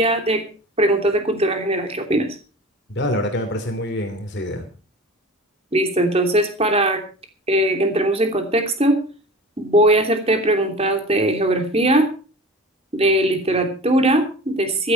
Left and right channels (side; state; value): both; normal; correlation 0.37